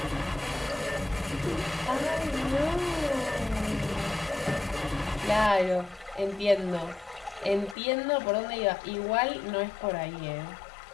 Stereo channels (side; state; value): right; drops out; at 7.8 s